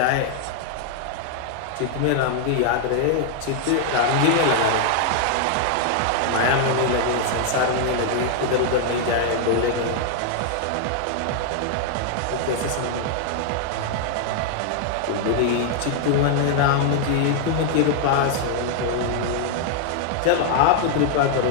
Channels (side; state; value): both; different; correlation 0.00